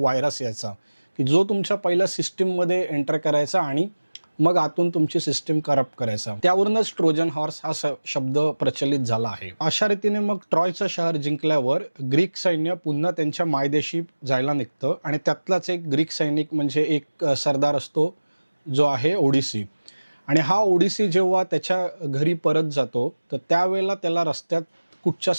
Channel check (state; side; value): inverted; both; correlation -1.00